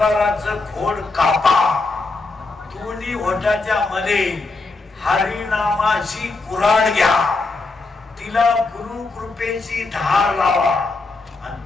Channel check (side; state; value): right; quieter; 3.6 dB